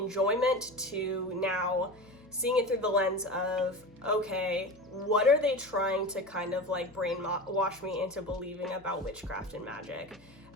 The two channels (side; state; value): left; noise; hum, 26 dB below the sound